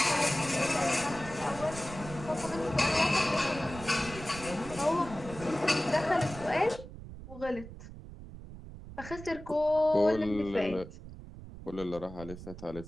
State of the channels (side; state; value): right; noise; rumble, 13 dB below the sound